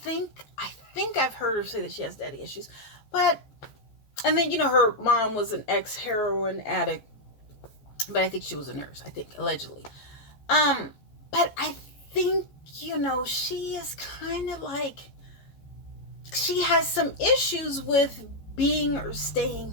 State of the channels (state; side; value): late; right; 15 ms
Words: think I've heard her say that she has daddy issues. And then, her mom was an ex-heroin addict, but I think she was a nurse, allegedly. But I think, she is kind of like, she has some issues with being or staying